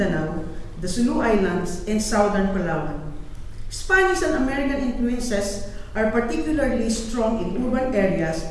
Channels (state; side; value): identical; both; correlation 1.00